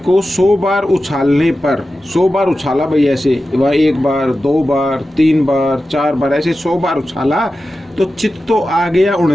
100 बार उछालने पर, 100 बार उछाला भाई, ऐसे वह 1 बार 2 बार 3 बार 4 बार ऐसे 100 बार उछाला तो चित तो आ गया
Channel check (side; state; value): both; normal; correlation 0.93